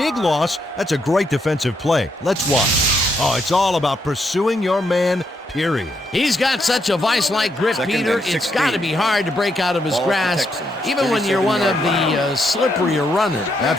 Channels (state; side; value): normal; both; correlation 0.77